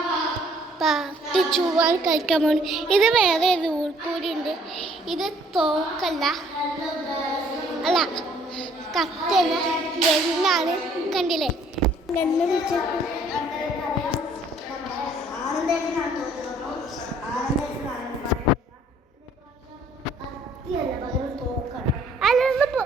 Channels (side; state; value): both; normal; correlation 0.60